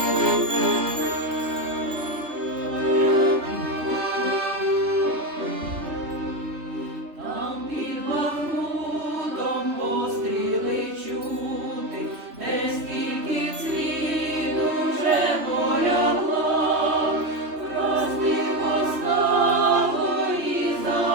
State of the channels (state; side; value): late; left; 3.1 ms